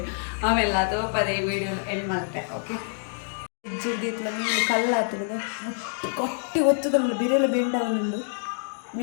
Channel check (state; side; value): silent; right; digital silence